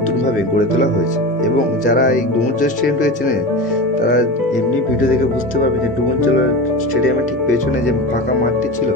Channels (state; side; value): normal; both; correlation 0.26